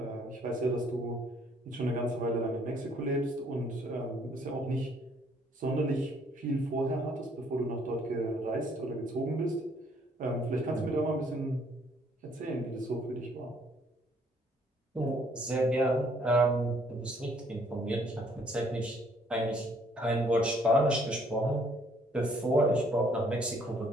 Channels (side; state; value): both; normal; correlation 0.64